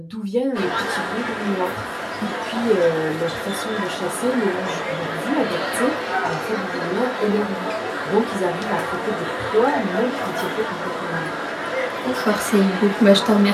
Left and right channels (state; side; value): identical; both; correlation 1.00